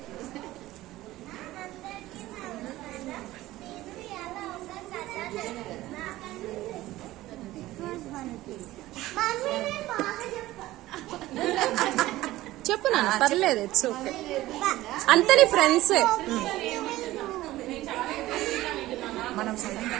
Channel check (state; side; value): quieter; left; 16.5 dB